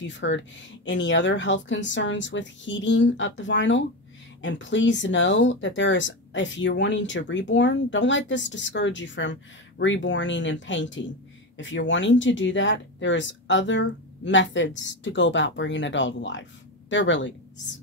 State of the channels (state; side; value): normal; both; correlation 0.17